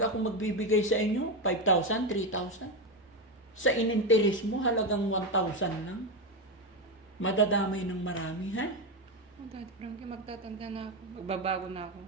magbibigay sa inyo, 5,000, 3,000. Sa ininteres mo, halagang 1,000 lang. Madadamay ng marami, ha? Oh, Daddy Frankie, magtatanda na ako. Magbabago na ako.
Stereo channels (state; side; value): normal; both; correlation 0.12